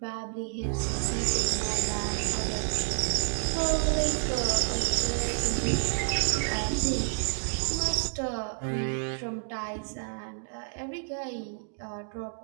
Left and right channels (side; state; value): left; silent; digital silence